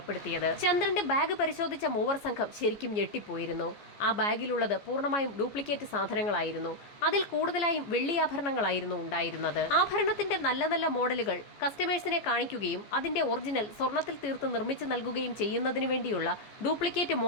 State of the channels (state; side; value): late; right; 14 ms